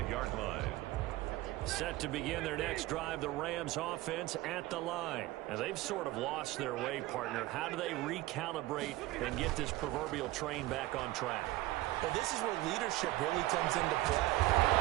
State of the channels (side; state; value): left; quieter; 17.8 dB